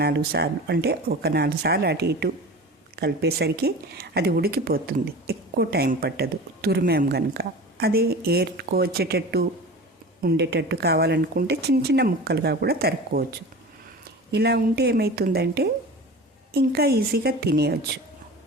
4 సార్లు, అంటే ఒక 4 సార్లు అటు ఇటు కలిపేసరికి అది ఉడికిపోతుంది, ఎక్కువ టైం పట్టదు తురిమేం కనుక. అదే ఏర్చుకోవచ్చేటట్టు ఉండేటట్టు కావాలనుకుంటే చిన్న ముక్కలుగా కూడా తరుక్కోవచ్చు. ఇలా ఉంటే ఏమవుతుందంటే ఇంకా ఈజీగా తినేయచ్చు.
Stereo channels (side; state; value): both; normal; correlation 0.35